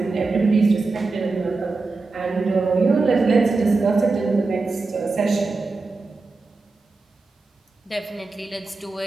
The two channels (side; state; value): left; quieter; 3.8 dB